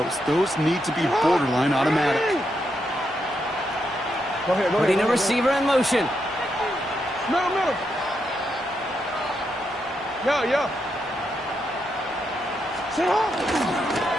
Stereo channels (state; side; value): normal; both; correlation 0.82